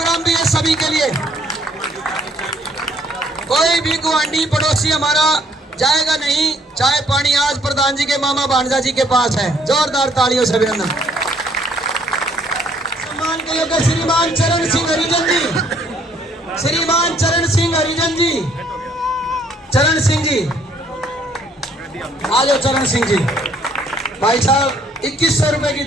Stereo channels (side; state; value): both; normal; correlation 0.64